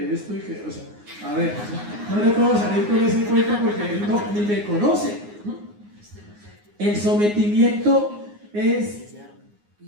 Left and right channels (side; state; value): left; late; 9.6 ms